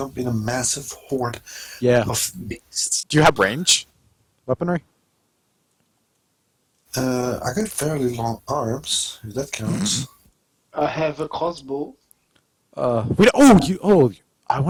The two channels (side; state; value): both; identical; correlation 1.00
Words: in a massive horde Yeah. of beasts. Do you have range weaponry? I got fairly long arms, if that counts. I have a crossbow. We don't, I